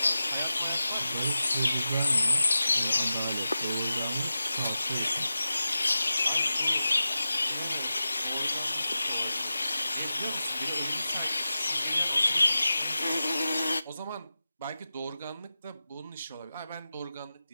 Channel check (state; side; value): inverted; both; correlation -0.92